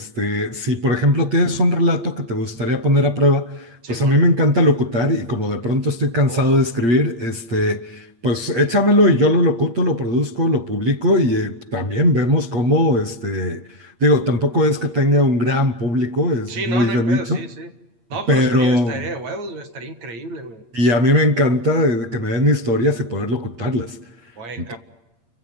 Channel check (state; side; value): late; left; 8.6 ms